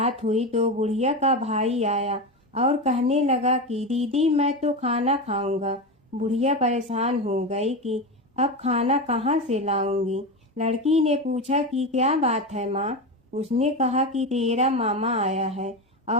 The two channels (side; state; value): both; normal; correlation 0.19